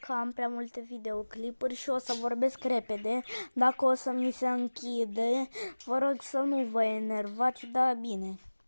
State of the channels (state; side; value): inverted; both; correlation -1.00